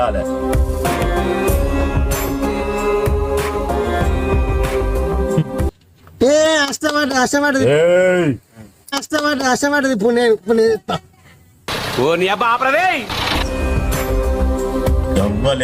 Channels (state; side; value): identical; both; correlation 1.00